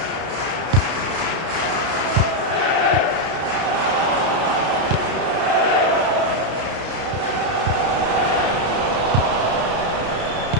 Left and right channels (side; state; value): left; late; 32 ms